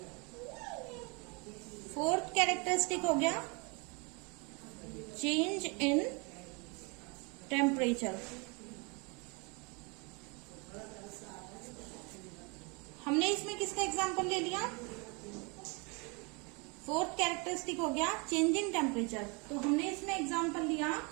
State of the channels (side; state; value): left; quieter; 31.2 dB